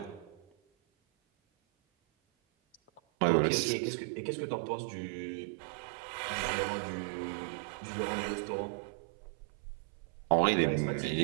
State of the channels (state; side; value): drops out; left; at 3.0 s